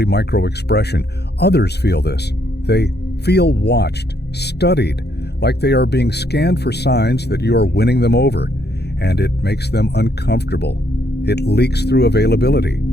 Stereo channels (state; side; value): late; right; 0.48 ms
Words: micro-expression. Others feel this. They feel watched, studied, like they are being scanned for signs that you are winning them over, and it makes them uncomfortable. It leaks through availability.